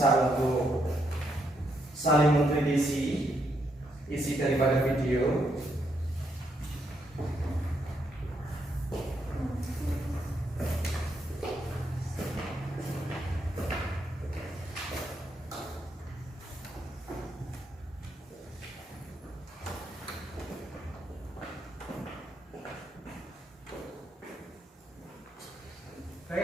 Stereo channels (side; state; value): both; normal; correlation 0.77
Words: untuk saling mengkritisi isi daripada video.